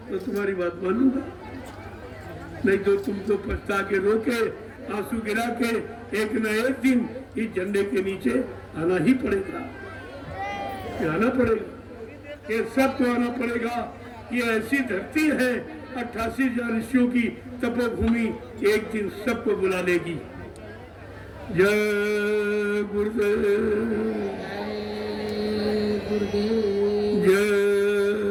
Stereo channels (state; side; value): identical; both; correlation 1.00